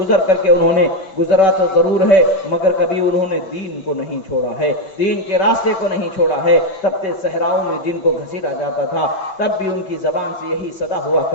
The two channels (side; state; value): right; late; 5.6 ms